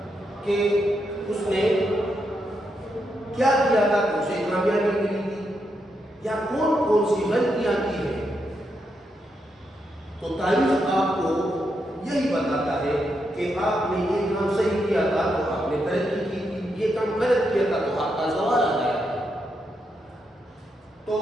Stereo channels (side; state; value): both; normal; correlation 0.82